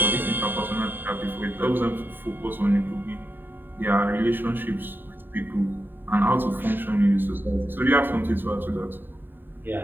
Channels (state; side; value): late; left; 0.094 ms